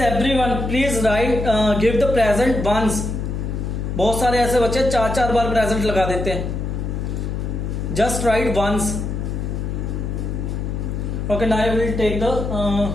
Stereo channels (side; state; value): left; noise; hum, 3 dB below the sound